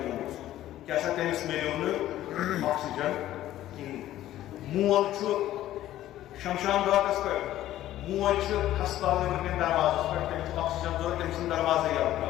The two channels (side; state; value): right; quieter; 13.6 dB